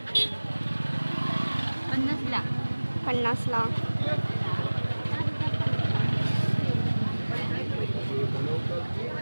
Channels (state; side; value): inverted; both; correlation -1.00